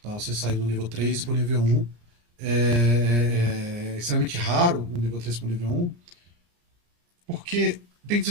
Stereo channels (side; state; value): left; late; 34 ms